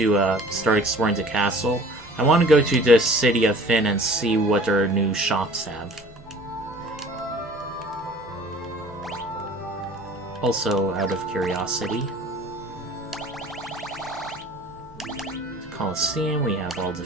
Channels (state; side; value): noise; right; hum, 27 dB below the sound